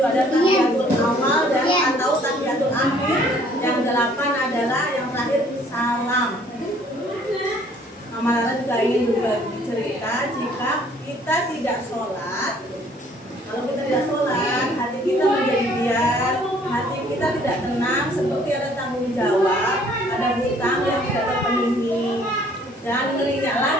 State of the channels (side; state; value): both; normal; correlation 0.59